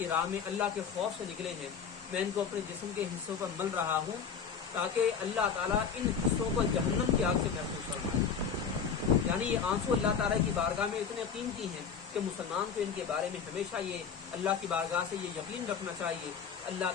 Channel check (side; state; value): right; quieter; 6.6 dB